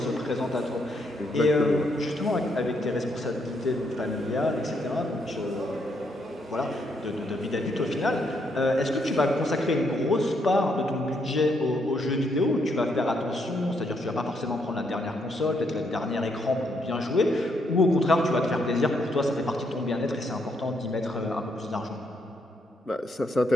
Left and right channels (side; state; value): both; normal; correlation 0.75